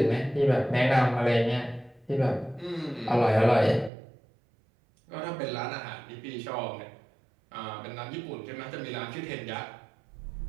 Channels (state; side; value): drops out; left; at 3.9 s